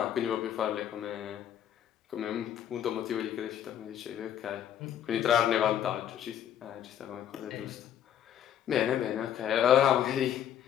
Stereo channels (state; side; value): quieter; right; 10.1 dB